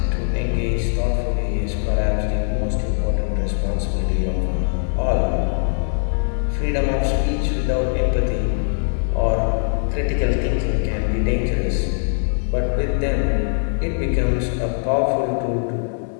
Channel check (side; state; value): right; silent; 63 dB below the other